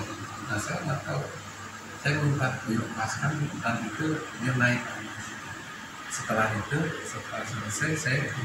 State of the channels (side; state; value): both; identical; correlation 1.00